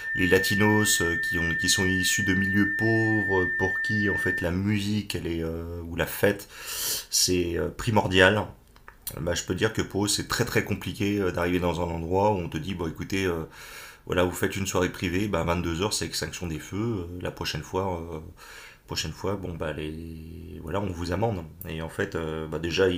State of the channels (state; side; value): identical; both; correlation 1.00